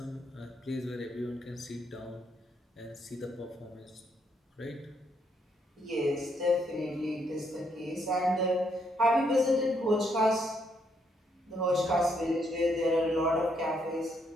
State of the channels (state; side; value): normal; both; correlation 0.74